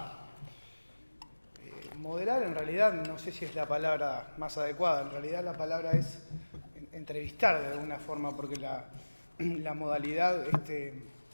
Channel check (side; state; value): both; inverted; correlation -1.00